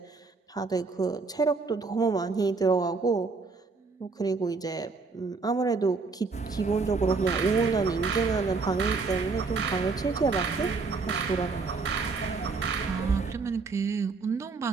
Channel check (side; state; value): left; quieter; 4.3 dB